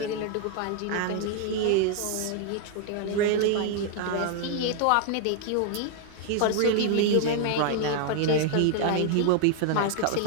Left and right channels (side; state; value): both; different; correlation 0.00